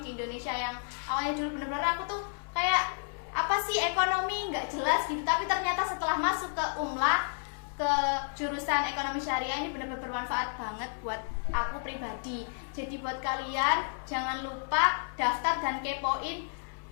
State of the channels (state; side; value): silent; right; 57 dB below the other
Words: di Indonesia yang awalnya dulu benar-benar aku tuh kayak apa sih ekonomi nggak jelas gitu, tapi ternyata setelah masuk ke Umla, ke jurusan ekonomi syariah ini benar-benar bermanfaat banget buat aku pribadi. Jadi buat kalian jangan lupa daftar dan kepoin.